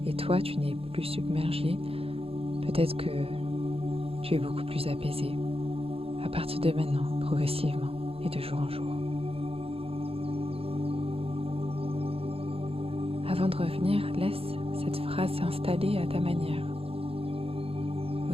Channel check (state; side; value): late; left; 0.28 ms